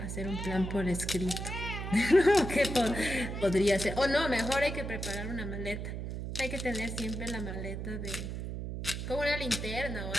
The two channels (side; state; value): right; noise; hum, 5 dB below the sound